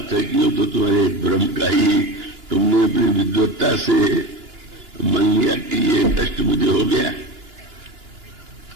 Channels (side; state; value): left; late; 2.9 ms